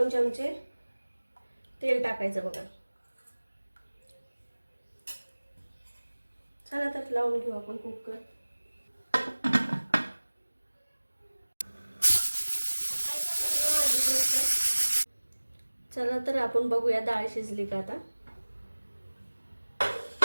चमचे तेल टाकायचं बघा। चला तर लावून घेऊ आपण कुकर। चला तर आपण बघूया डाळ शिजली का आता।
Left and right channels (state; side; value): inverted; both; correlation -1.00